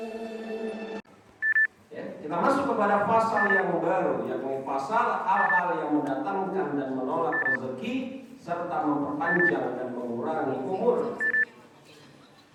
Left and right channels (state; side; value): identical; both; correlation 1.00